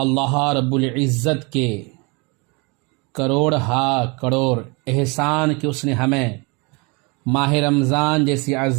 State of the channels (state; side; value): quieter; left; 29.4 dB